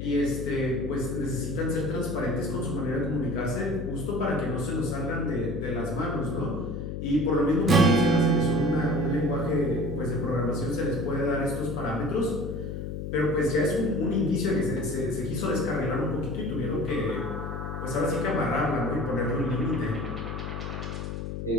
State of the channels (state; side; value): noise; left; hum, 5 dB below the sound